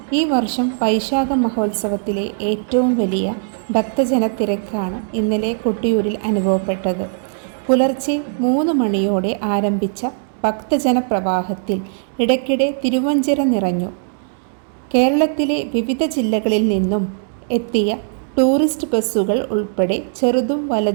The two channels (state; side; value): silent; left; digital silence